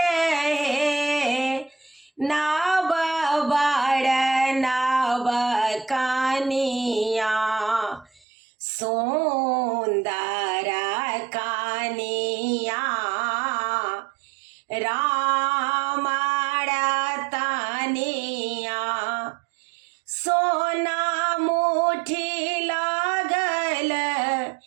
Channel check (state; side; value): drops out; left; at 8.2 s